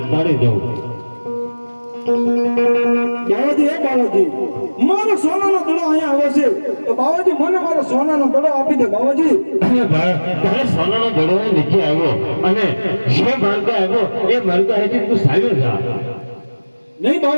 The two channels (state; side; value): inverted; both; correlation -1.00